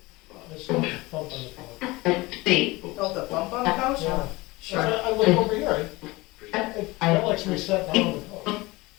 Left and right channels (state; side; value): quieter; right; 21.9 dB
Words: There's no bump on the phone. You felt a bump on the couch? Yeah. Sure. I look over here, I felt like somebody sat down on the couch.